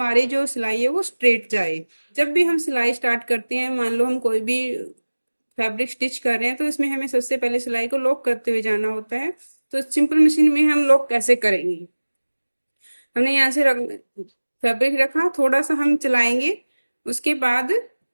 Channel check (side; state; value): both; inverted; correlation -1.00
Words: जो सिलाई है वो स्ट्रेट जाए। जब भी हम सिलाई स्टार्ट करते हैं, मान लो हम कोई भी फैब्रिक स्टिच कर रहे हैं, तो इसमें हमें सबसे पहले सिलाई को लॉक करते हुए जाना होता है। तो सिंपल मशीन में हम लॉक कैसे करेंगे। हमने यहाँ से फैब्रिक रखा, थोड़ा सा हम चलाएंगे, उसके बाद